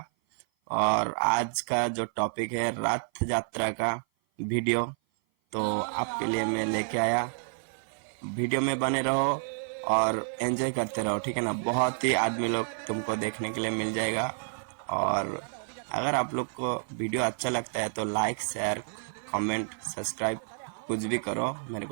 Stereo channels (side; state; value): left; silent; 55 dB below the other